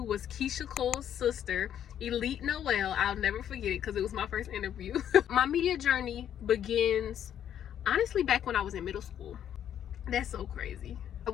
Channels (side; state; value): right; quieter; 9.9 dB